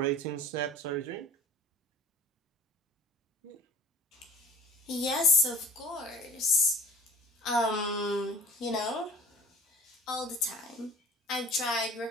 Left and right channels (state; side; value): normal; both; correlation 0.45